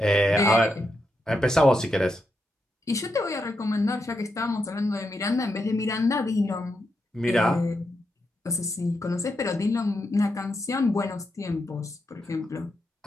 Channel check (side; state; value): both; normal; correlation 0.84